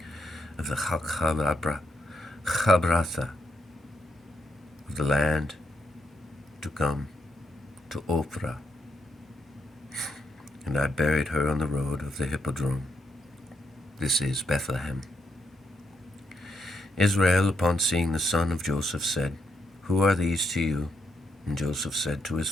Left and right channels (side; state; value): both; normal; correlation 0.78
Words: of the Chabratha of the land to come to Ophrah, and I buried her on the road of the hippodrome. This is Bethlehem. Israel, upon seeing the son of Joseph, said, Who are these to you? And Joseph said to his